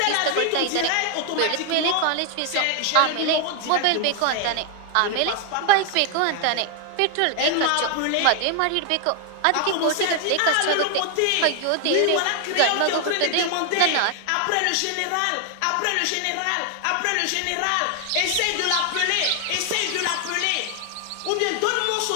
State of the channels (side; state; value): both; different; correlation 0.00